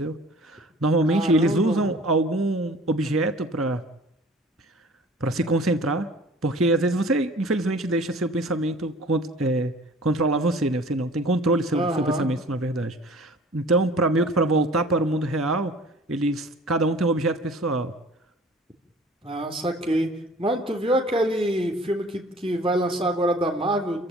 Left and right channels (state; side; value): normal; both; correlation 0.47